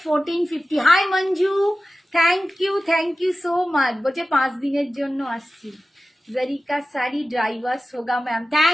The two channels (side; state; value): both; normal; correlation 0.95